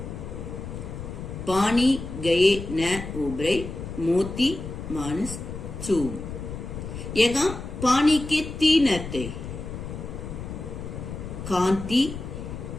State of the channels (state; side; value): noise; left; rumble, 8 dB below the sound